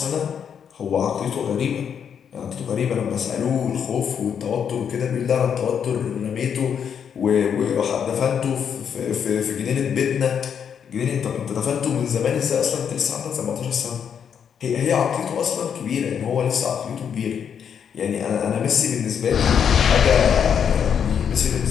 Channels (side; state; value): right; quieter; 7.8 dB